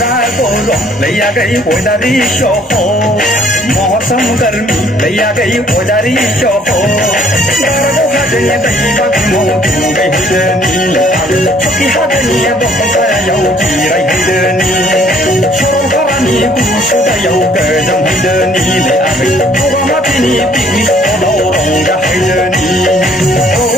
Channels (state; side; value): normal; both; correlation 0.61